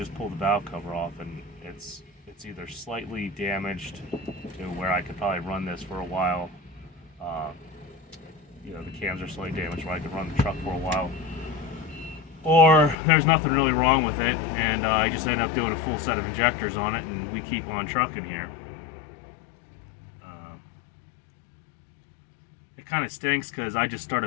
pull the valve cover off and it's either slightly damaged to where I could probably run this for a while. The cams are slightly damaged where I could run the truck for a while, or there's nothing really wrong with it, and I just end up doing a full set of injectors on it, and we keep on trucking here. It kind of stinks because I just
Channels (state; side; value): drops out; right; at 13.0 s